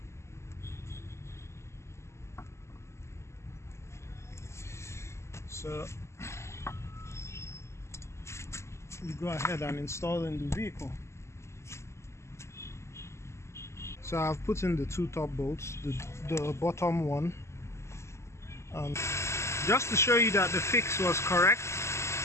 So you go ahead and install in the vehicle. So I've put in the two top bolts, the bottom one, and just to show you that the fix was correct,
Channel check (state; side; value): late; right; 0.13 ms